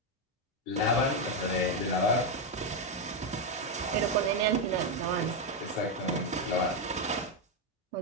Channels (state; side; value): normal; both; correlation 0.05